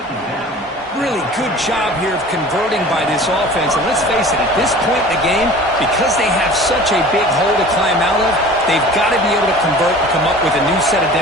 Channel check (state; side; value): normal; both; correlation 0.42